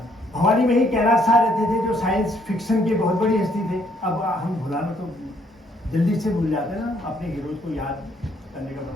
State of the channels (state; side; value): normal; both; correlation 0.68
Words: भवानी में ही कैलाश साह रहते थे, जो साइंस फिक्शन के बहुत बड़ी हस्ती थे। अब हम भुलाना तो जल्दी से भूल जाते हैं ना अपने हीरोज को याद करने के